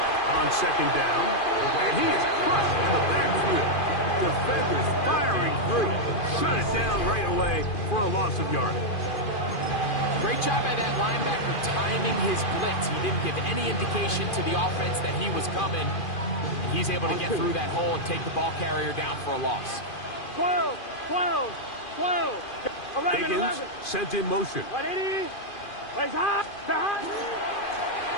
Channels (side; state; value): right; late; 2.5 ms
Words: on second down. And he is crushed in the backfield. Defenders firing through. Shut it down right away for a loss of yardage. Great job by that linebacker timing his blitz. He didn't give any indication to the offense that he was coming. And he's able to get through that hole and take the ball carrier down for a loss. 12, 12, 12. 11, Higgins 11. sent in motion. 180. Plays hot. Hot.